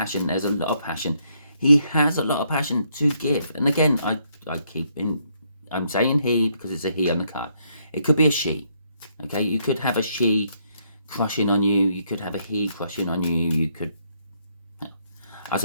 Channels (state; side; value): inverted; both; correlation -0.72